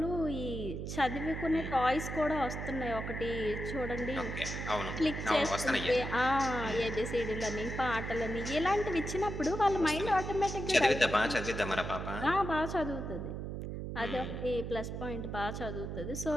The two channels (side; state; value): right; noise; hum, 5 dB below the sound